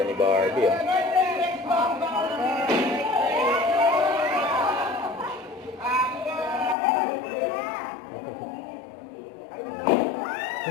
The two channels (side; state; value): right; drops out; at 6.8 s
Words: ni Barbie, oh.